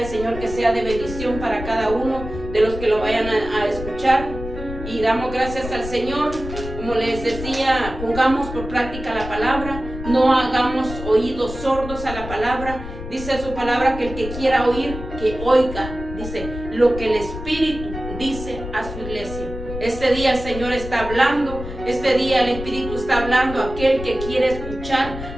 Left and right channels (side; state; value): left; noise; rumble, 9 dB below the sound